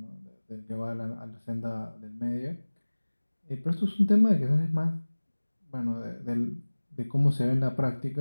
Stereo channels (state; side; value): inverted; both; correlation -1.00